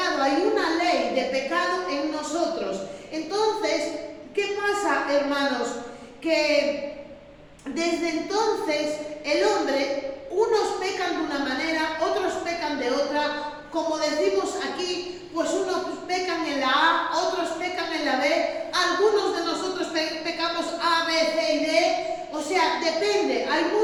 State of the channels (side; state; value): both; identical; correlation 1.00